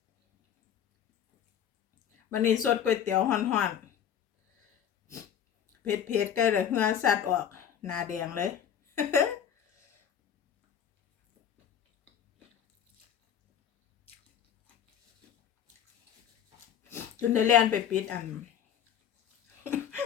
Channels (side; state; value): right; quieter; 9.1 dB